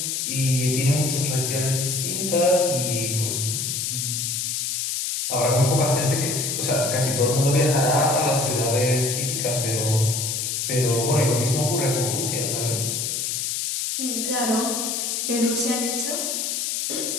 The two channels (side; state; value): left; noise; hiss, 1 dB below the sound